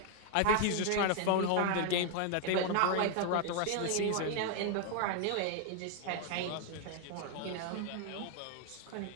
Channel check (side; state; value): both; different; correlation 0.00